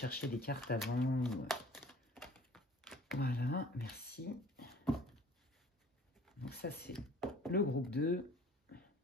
des cartes avant. Voilà, merci. Donc ça c'est le groupe 2.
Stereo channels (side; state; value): both; normal; correlation 0.50